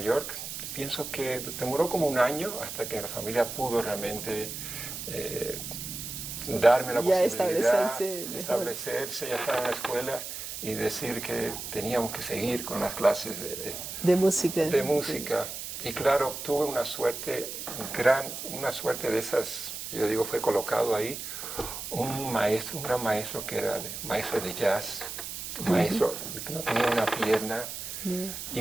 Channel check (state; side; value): noise; right; hiss, 7 dB below the sound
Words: pienso que demoró como un año hasta que la familia pudo realmente darme la Ya posibilidad establecerse mejor. establecerse, ya estar en la escuela y decir que teníamos que seguir con las clases De música. de música. Y claro, tuve una suerte una suerte de esas, yo digo, fue colocado ahí un gran maestro que era maestro de jazz, un maestro que no tenía una pierna,